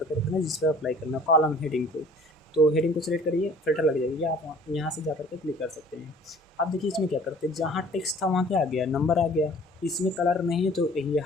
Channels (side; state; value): both; normal; correlation 0.51